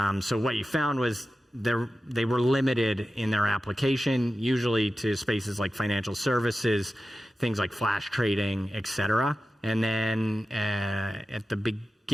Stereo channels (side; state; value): both; normal; correlation 0.93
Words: So what you found was they were limited in their application, usually to spaces like financial services, things like flash trading, et cetera. And then at the